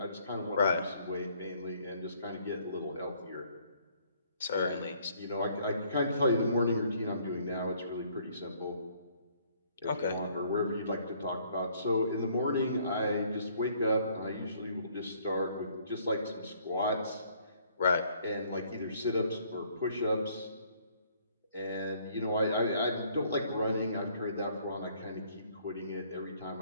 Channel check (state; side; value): inverted; both; correlation -0.63